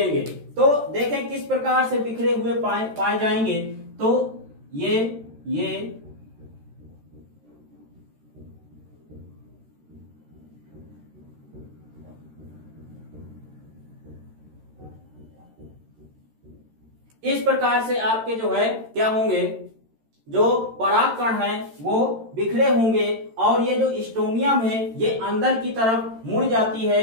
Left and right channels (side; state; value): left; late; 13 ms